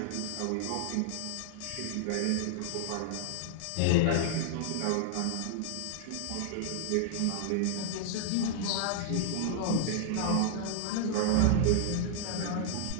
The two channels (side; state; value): both; different; correlation 0.00